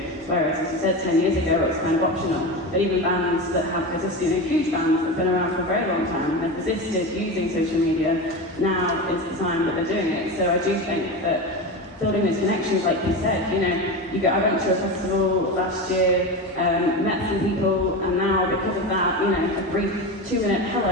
Whereas, as you said, 10 years ago, it was kind of optional. But even bands that have persisted, huge bands that have been around for a very long time and have persisted using social media, now is the time that they're doing it. So I do think that building those connections, like you said, I went to a festival last year, met some people, and now because of that, a brief 2-minute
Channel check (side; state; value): both; normal; correlation 0.23